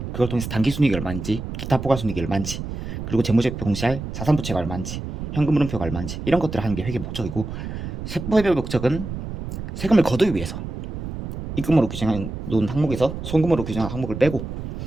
그걸 통해서 단기순이익이 얼마인지 기타 포괄순이익이 얼마인지 그리고 재무제표 공시할 자산부채가 얼마인지 현금 흐름표가 얼마인지 이런 것들을 하는 게 회계 목적이고 세법의 목적은 세금을 거두기 위해서 입금으로 규정한 놓은 항목에서 송금으로 규정한 항목을 빼고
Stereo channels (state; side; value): noise; right; rumble, 7 dB below the sound